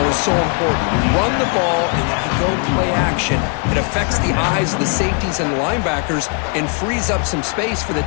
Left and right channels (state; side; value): quieter; right; 37.8 dB